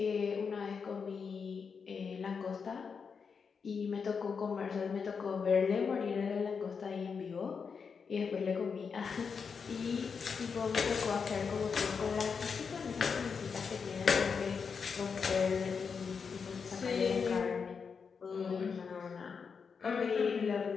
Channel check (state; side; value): quieter; right; 5.8 dB